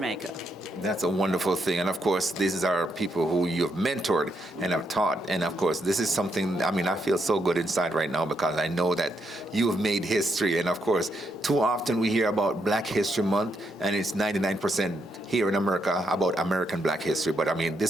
That's a wonderful thing. And of course, these are people who you've mentored and have taught. And of course, this is something, I mean, I feel so good inside right now because I know that you have made history. And of course, too often we hear about Black History Month, and it's 99% here in America about American Black history. But I mean,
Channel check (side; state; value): both; normal; correlation 0.79